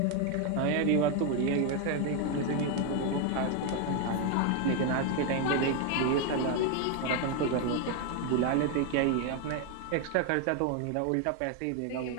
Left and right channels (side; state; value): both; different; correlation 0.01